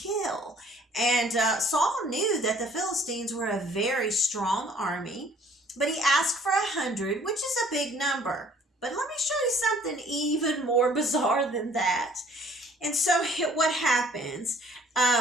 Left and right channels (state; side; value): normal; both; correlation 0.57